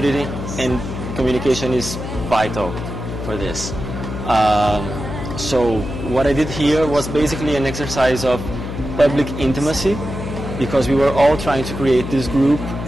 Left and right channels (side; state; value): left; noise; hum, 7 dB below the sound